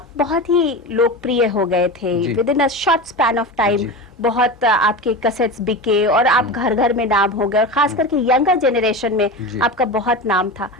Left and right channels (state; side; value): normal; both; correlation 0.26